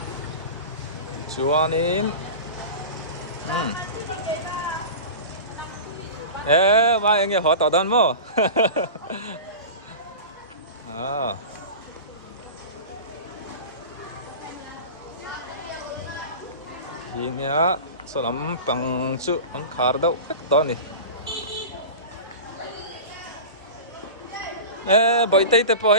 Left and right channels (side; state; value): both; inverted; correlation -0.31